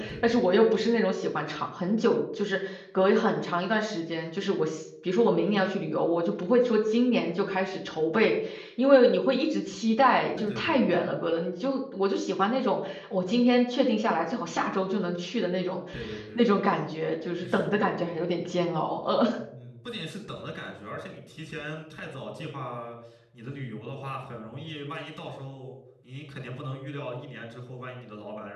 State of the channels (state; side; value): identical; both; correlation 1.00